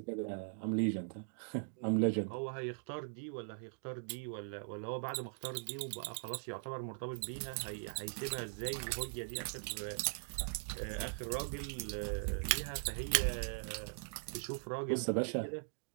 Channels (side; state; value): left; silent; digital silence